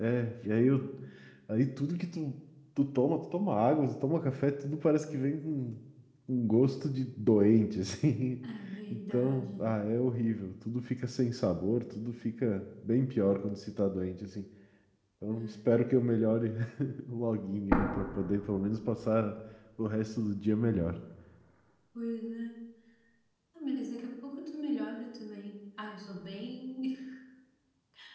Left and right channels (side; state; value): both; identical; correlation 1.00